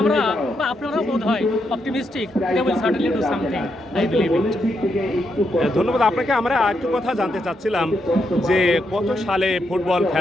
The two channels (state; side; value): normal; both; correlation 0.81